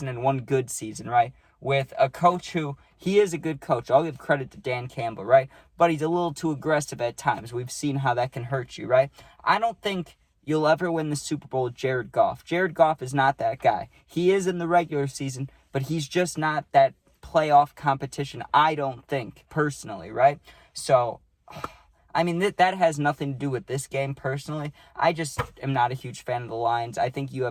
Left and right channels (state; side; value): identical; both; correlation 1.00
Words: and 1 good season, right? With a coach who, he is a good coach. I'll give credit to Dan Campbell, right? But he's a little too aggressive at times. We've seen how that can hurt you, right? I don't think you'll ever win the Super Bowl with Jared Goff. Jared Goff is not that guy. He is in the regular season, but he's just not that playoff competition, I don't think, personally, right? So, I mean, that has nothing to do with this game, personally. I just am not a huge fan of the Lions. I think you